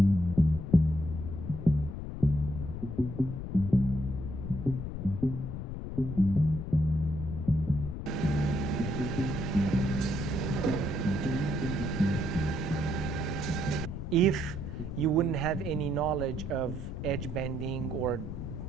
If you wouldn't have any knowledge of edge bending or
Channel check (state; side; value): noise; left; rumble, 6 dB below the sound